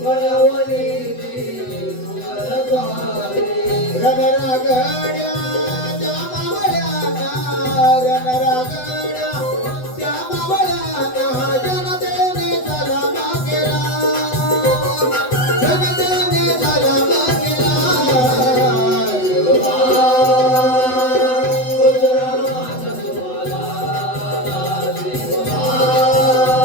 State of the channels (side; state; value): right; late; 8.0 ms